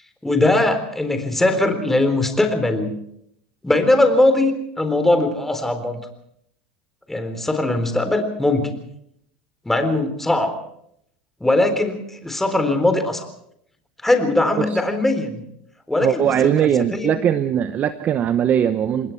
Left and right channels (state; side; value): normal; both; correlation 0.70